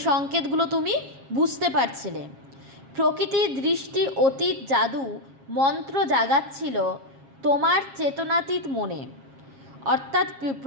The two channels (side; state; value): left; late; 7.4 ms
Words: সংকেতগুলো তুমি বুঝতে পারছিলে। প্রকৃতির দৃষ্টি অতীত জাদু মন্ত্র জাগাচ্ছিল তোমার চেতনাতীত মনে, অর্থাৎ